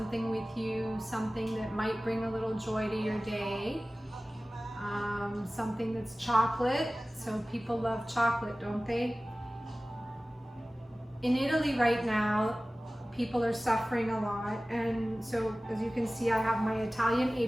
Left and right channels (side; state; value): both; normal; correlation 0.97